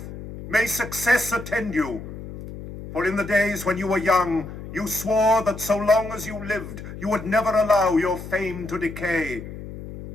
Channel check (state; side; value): noise; left; hum, 11 dB below the sound